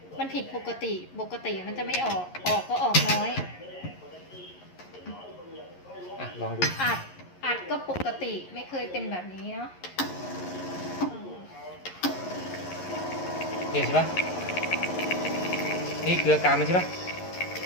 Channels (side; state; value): right; late; 11 ms